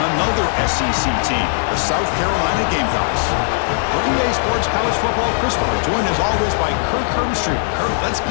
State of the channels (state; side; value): silent; right; 66 dB below the other